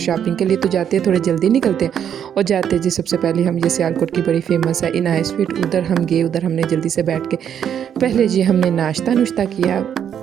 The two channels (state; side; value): quieter; left; 8.9 dB